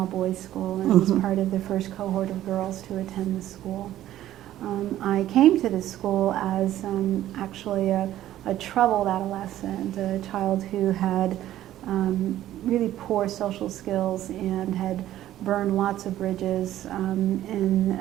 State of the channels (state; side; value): quieter; left; 13.2 dB